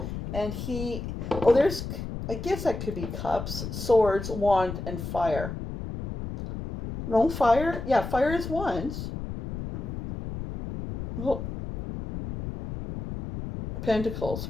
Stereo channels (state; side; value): noise; left; rumble, 7 dB below the sound